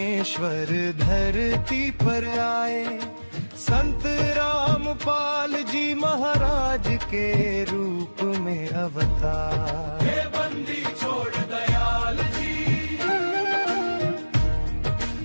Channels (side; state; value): both; inverted; correlation -1.00